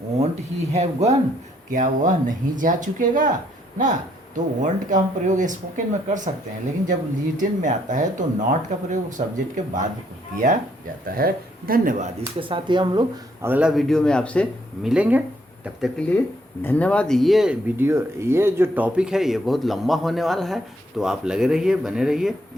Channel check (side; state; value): both; normal; correlation 0.70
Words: वॉन्ट ही हैव गॉन, क्या वह नहीं जा चुकेगा ना। तो वॉन्ट का हम प्रयोग स्पोकन में कर सकते हैं, लेकिन जब रिटन में आता है तो नॉट का प्रयोग सब्जेक्ट के बाद किया जाता है। धन्यवाद। इसके साथ ही हम लोग अगला वीडियो में आपसे मिलेंगे, तब तक के लिए धन्यवाद। ये वीडियो, ये जो टॉपिक है ये बहुत लंबा होने वाला है, तो आप लगे रहिए, बने रहिए।